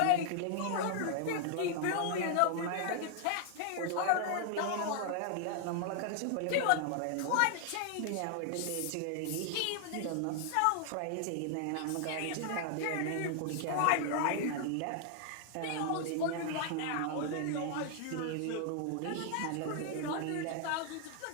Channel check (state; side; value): different; both; correlation 0.00